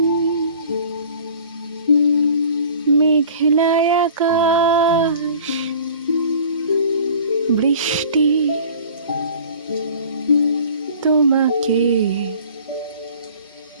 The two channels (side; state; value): both; inverted; correlation -0.46